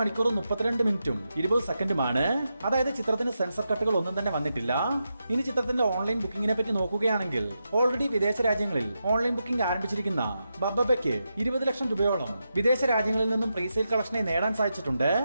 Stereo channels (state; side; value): inverted; both; correlation -0.87